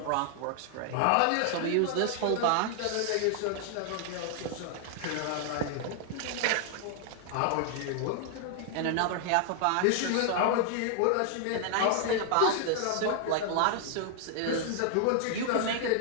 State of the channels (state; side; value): different; both; correlation 0.00